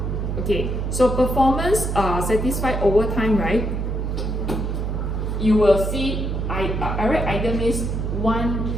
Okay, so performance satisfied over time, right? You will see, I write either means one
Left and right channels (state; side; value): noise; right; hum, 1 dB below the sound